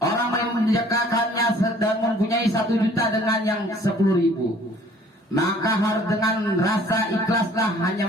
orang yang menyedekahkannya sedang mempunyai 1 juta dengan yang 10.000. Maka harus dengan rasa ikhlaslah,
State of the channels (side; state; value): both; normal; correlation 0.55